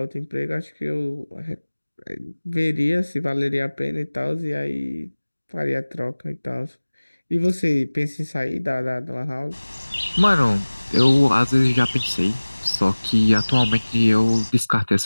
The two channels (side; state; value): both; inverted; correlation -1.00